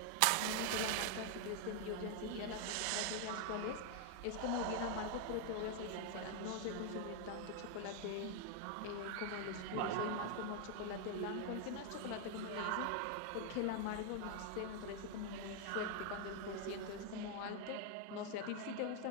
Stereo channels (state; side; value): different; both; correlation 0.00